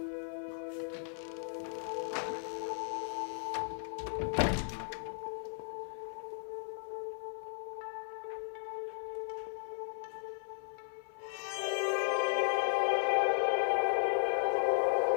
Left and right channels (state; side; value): silent; right; 54 dB below the other